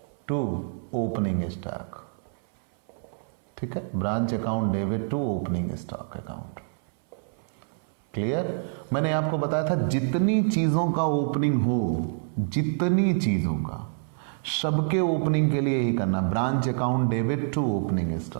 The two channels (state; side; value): silent; left; 59 dB below the other